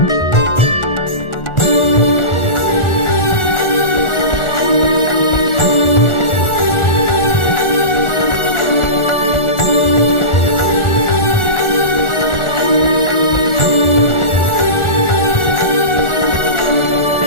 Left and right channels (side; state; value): right; late; 1.4 ms